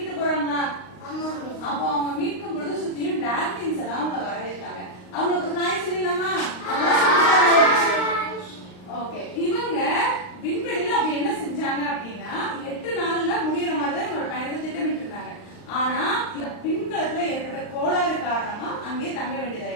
போறாங்களா? அப்போ அவங்க மீட்கும் பொழுது சுத்தியும் டால்பின்ஸ் எல்லாம் அவங்க வரவேற்றாங்க. அவங்களுக்கு ஹாய் சொல்லலாமா? ஓகே. இவங்க விண்வெளியில அப்படி என்ன செஞ்சாங்க அப்படின்னா 8 நாள்ல முடியற மாதிரி தான் இவங்களோட பயணத்தை திட்டமிட்டு இருந்தாங்க. ஆனா விண்கலத்துல ஏற்பட்ட கோளாறு காரணமா அங்கேயே தங்க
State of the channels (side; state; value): right; late; 38 ms